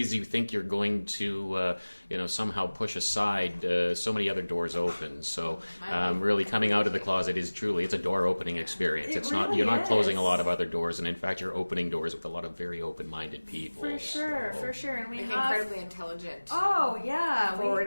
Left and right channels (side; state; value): both; inverted; correlation -1.00